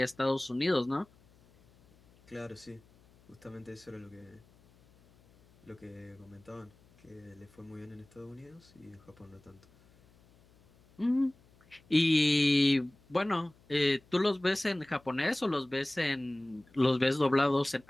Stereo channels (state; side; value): noise; left; hum, 29 dB below the sound